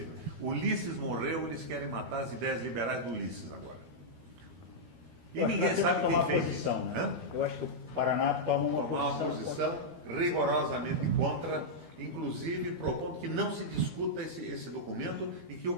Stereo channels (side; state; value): left; late; 12 ms